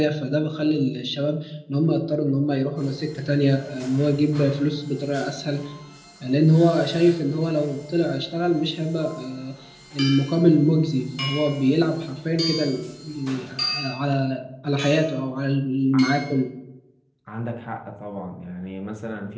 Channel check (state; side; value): identical; both; correlation 1.00